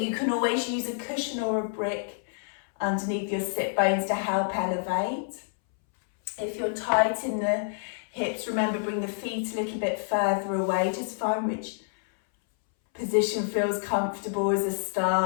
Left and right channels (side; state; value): right; silent; 59 dB below the other